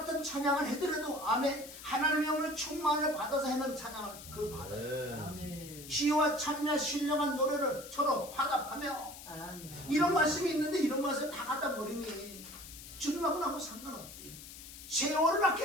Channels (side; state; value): left; noise; hiss, 14 dB below the sound